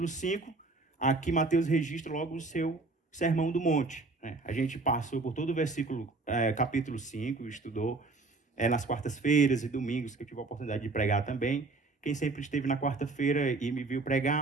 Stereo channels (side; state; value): left; quieter; 3.6 dB